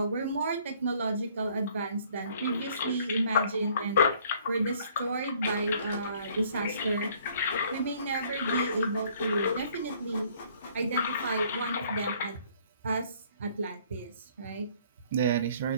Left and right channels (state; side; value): inverted; both; correlation -0.60